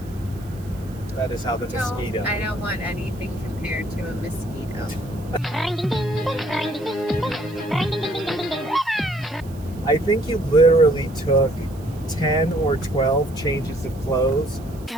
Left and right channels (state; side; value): noise; right; hiss, 24 dB below the sound